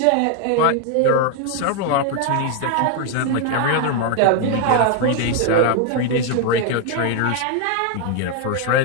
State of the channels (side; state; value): both; different; correlation 0.01